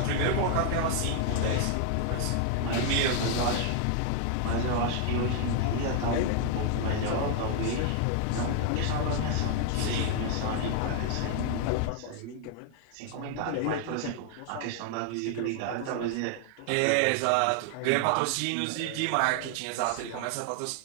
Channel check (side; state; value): both; different; correlation 0.00